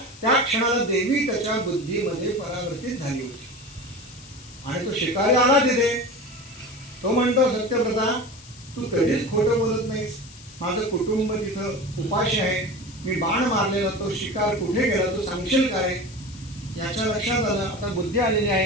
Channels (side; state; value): left; noise; hiss, 20 dB below the sound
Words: त्या क्षणाला देवी त्याच्या बुद्धीमध्ये परावर्तित झाली होती. आणि तो शिकारी आला तिथे. तो म्हणतो सत्यव्रता, तू कधीच खोटं बोलत नाहीस, माझं कुटुंब तिथं उपाशी आहे, मी बाण मारलेला तो शिकार कुठे गेला तू सांगशील काय. याच्या लक्षात आलं, आता बुद्धी आलेली